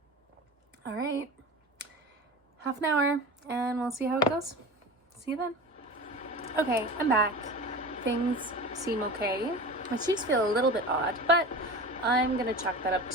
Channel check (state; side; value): normal; both; correlation 0.32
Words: All right. Half an hour, and we'll see how it goes. See you then. Okay, I'm back. Things seem okay. My cheeks feel a little bit odd, but I'm gonna chalk that up